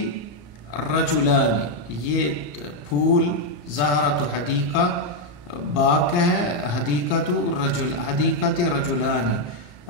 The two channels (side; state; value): right; late; 34 ms